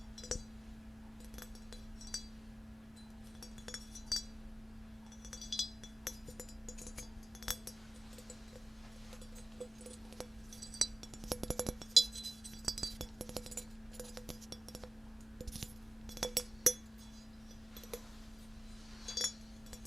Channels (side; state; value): both; normal; correlation 0.96